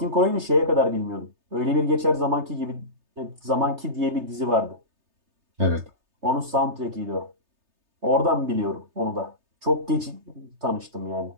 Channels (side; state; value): left; late; 3.3 ms